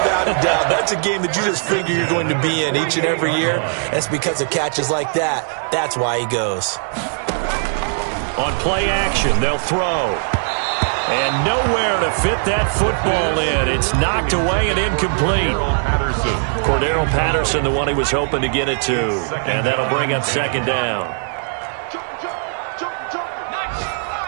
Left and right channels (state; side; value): silent; left; digital silence